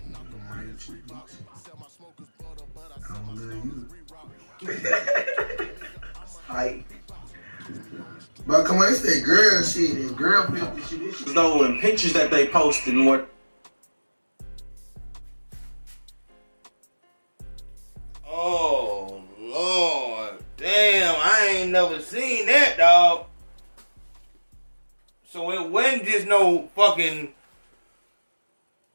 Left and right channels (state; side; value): inverted; both; correlation -1.00